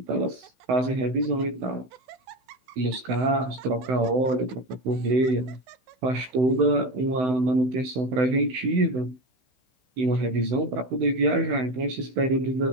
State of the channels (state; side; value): late; left; 16 ms